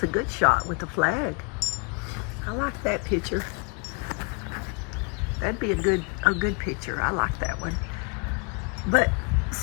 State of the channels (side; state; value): right; quieter; 32.7 dB